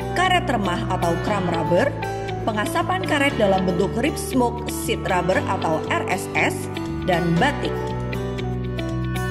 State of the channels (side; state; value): both; identical; correlation 1.00